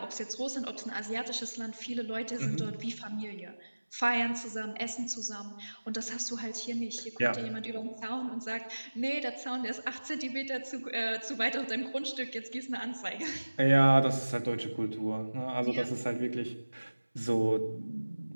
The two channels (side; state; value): both; inverted; correlation -1.00